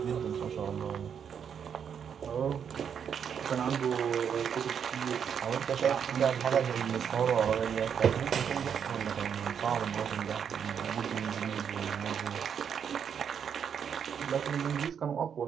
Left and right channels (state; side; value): quieter; left; 7.7 dB